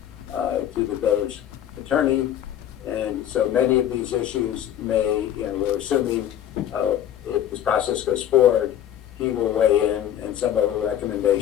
to the village attorney. And so many of these issues may, we're assuming if this process goes forward, he will weigh in, and some of the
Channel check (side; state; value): right; quieter; 10.8 dB